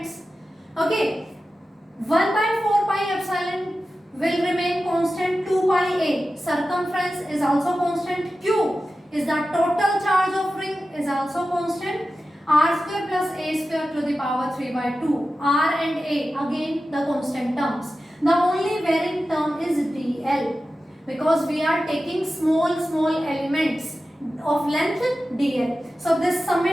Okay, 1 by 4 pi epsilon will remain constant, 2 pi a. Circumference is also constant. Q is the total charge of ring is also constant. R square plus a square to the power 3 by 2. R and a again the constant terms. The only varying term is dl, because we are taking small elements of length dl. So this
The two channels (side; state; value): both; normal; correlation 0.93